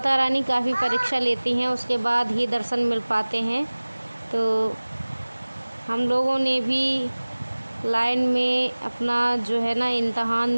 रानी काफ़ी परीक्षा लेती हैं, उसके बाद ही दर्शन मिल पाते हैं। तो हम लोगों ने भी लाइन में अपना जो है ना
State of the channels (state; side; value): inverted; both; correlation -1.00